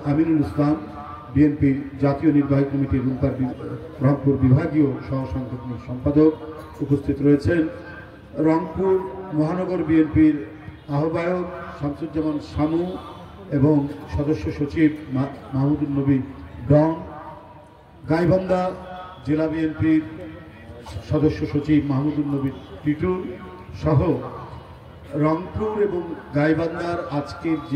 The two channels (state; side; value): identical; both; correlation 1.00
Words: আমিনুল ইসলাম, বিএনপির জাতীয় নির্বাহী কমিটির রংপুর বিভাগীয় সহ সাংগঠনিক সম্পাদক, উপস্থিত রয়েছেন রংপুর মহানগর বিএনপির আহ্বায়ক শামসুজ্জামান শামু এবং সদস্য সচিব মাহমুদুল নবী ডন, গাইবান্ধা জেলা বিএনপির সদস্য সচিব মাহমুদুল নবী টিটু সহ রংপুর এবং গাইবান্ধার আজকের